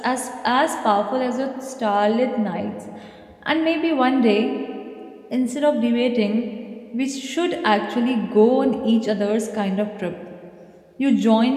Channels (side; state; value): both; identical; correlation 1.00